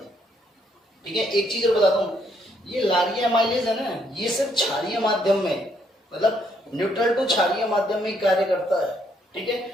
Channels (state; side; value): normal; both; correlation 0.71